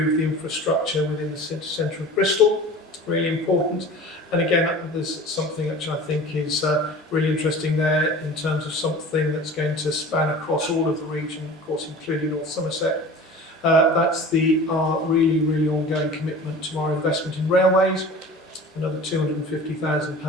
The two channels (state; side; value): normal; both; correlation 0.40